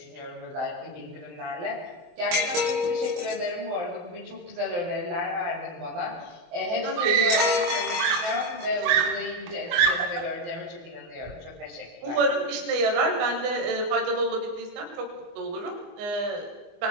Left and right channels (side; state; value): left; late; 24 ms